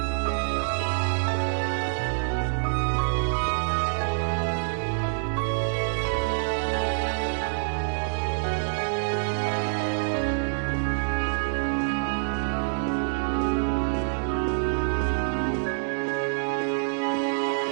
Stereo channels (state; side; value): silent; left; digital silence